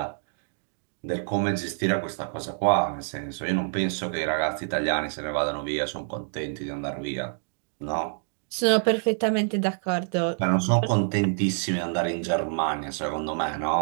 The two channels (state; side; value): silent; left; digital silence